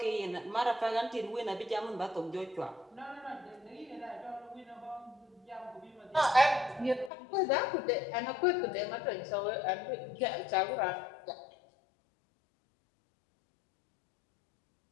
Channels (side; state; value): right; drops out; at 7.1 s